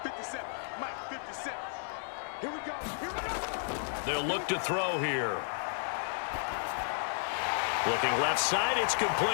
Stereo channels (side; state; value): right; silent; digital silence